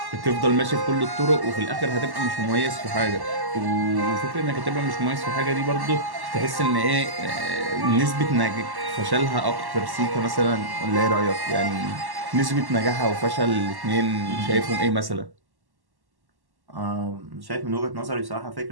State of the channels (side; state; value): left; late; 1.1 ms